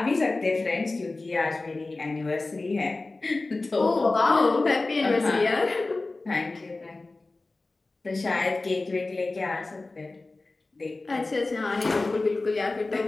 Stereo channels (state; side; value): quieter; right; 3.3 dB